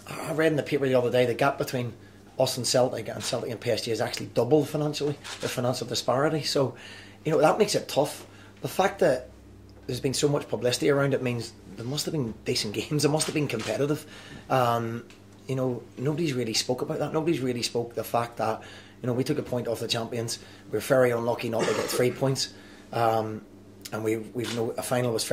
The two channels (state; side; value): identical; both; correlation 1.00